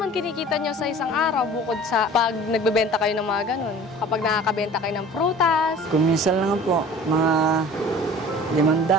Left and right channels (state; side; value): normal; both; correlation 0.44